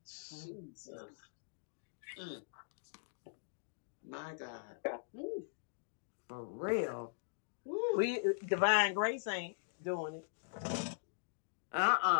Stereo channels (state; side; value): silent; right; digital silence